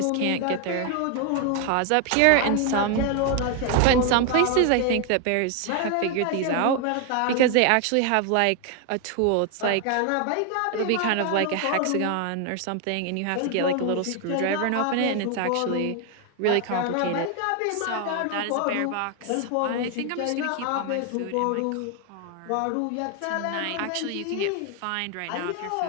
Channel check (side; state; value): both; different; correlation 0.01